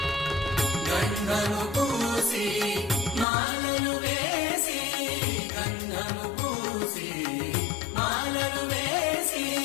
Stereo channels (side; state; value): right; drops out; at 3.2 s